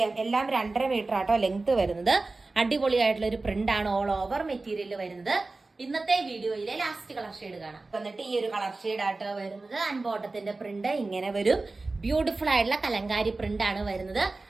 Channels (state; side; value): quieter; left; 3.4 dB